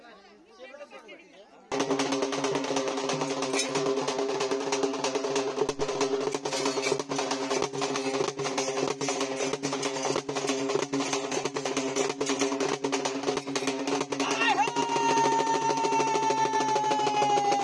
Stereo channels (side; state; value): both; identical; correlation 1.00